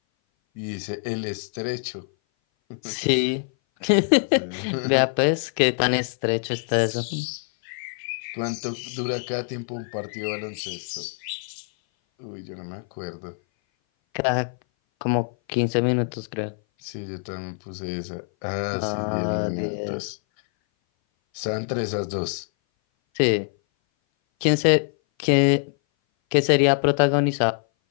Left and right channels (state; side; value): silent; right; 58 dB below the other